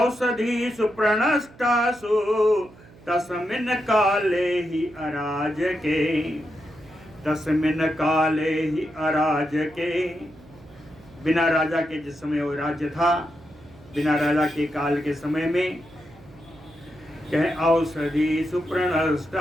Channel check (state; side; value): noise; right; hum, 23 dB below the sound